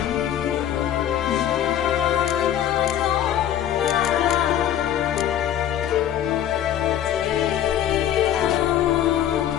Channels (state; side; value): quieter; right; 10.9 dB